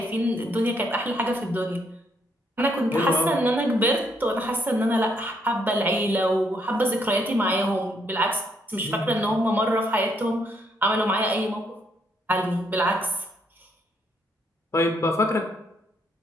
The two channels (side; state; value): both; normal; correlation 0.73